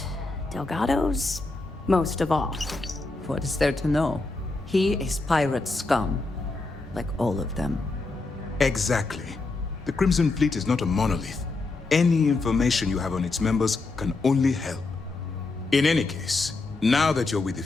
Delgado's most of all. What is there to know? He is pirate scum, like all of them. Exactly. The Crimson Fleet is not a monolith. Any information you have on its members can only help. In any case, now that you're with the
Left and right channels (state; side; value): quieter; right; 3.5 dB